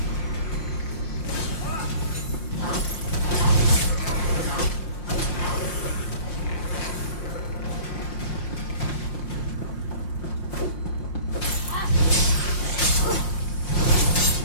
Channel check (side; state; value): right; late; 5.6 ms